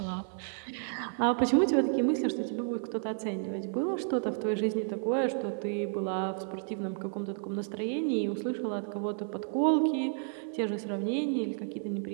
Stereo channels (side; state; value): left; silent; 55 dB below the other